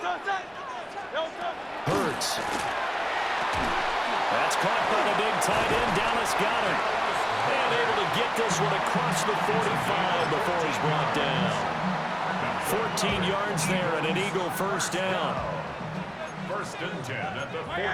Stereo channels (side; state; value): both; identical; correlation 1.00